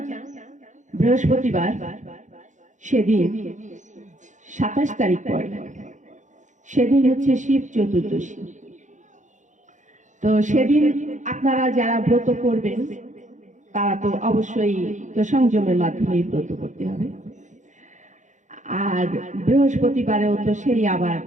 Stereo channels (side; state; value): left; late; 0.36 ms